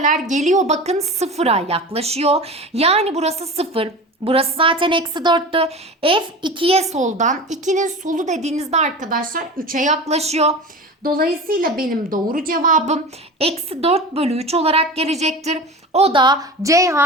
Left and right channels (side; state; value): both; normal; correlation 0.32